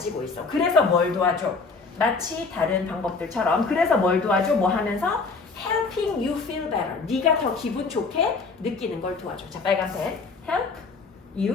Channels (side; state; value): right; quieter; 4.3 dB